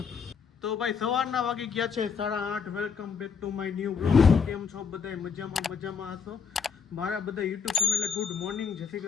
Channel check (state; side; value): quieter; right; 6.2 dB